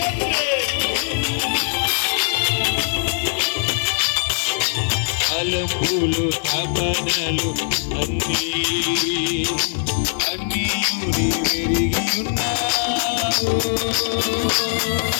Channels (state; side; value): silent; right; digital silence